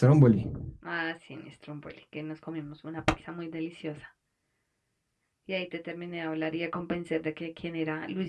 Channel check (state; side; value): identical; both; correlation 1.00